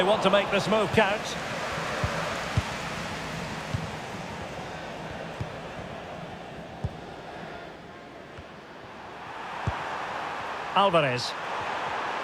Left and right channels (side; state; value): both; identical; correlation 1.00